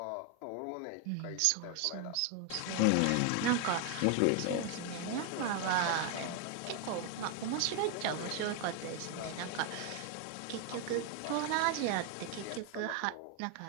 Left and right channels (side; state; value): both; different; correlation 0.01